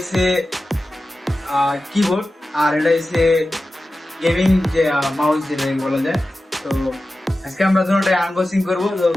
কিবোর্ড, আর এটা হচ্ছে গেমিং যে মাউস যেটা বলা যায়। তো আজকে আমরা দুটোটাই আনবক্সিং করবো, তো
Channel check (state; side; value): normal; both; correlation 0.94